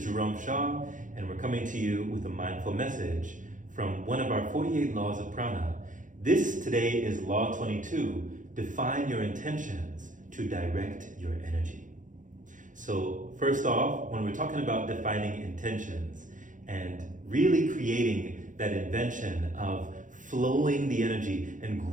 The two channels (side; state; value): left; late; 0.37 ms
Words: Jerome Shaw, and we're coming to you with a mindful message from one of our 48 laws of prana. This today is Law 22. Define your intentions to direct your energy. So first off, when we're talking about defining intentions and really creating that invention of flowing the energy and